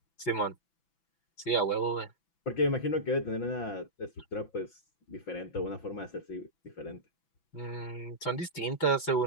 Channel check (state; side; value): late; right; 6.0 ms